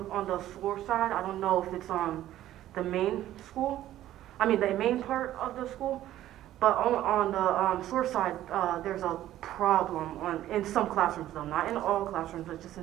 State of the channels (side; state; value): left; quieter; 13.4 dB